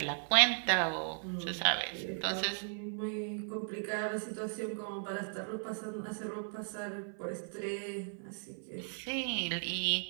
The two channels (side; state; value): left; silent; 54 dB below the other